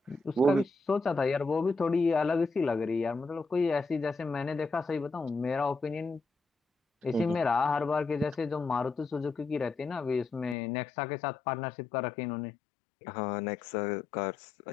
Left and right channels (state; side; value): drops out; right; at 10.6 s